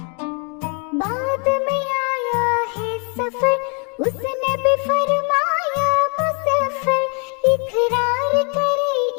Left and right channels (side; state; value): right; quieter; 36.9 dB